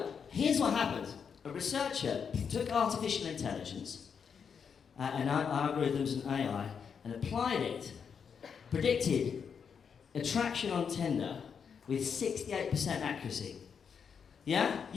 here's what happened. A researcher took artificial intelligence and algorithms and AI and applied it, predicted attraction on Tinder with 68% accuracy. Yeah?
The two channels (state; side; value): quieter; right; 6.7 dB